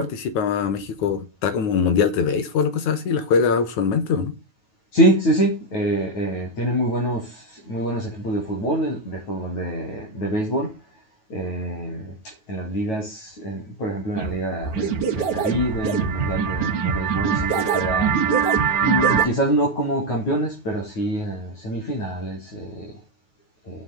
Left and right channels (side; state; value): right; late; 9.3 ms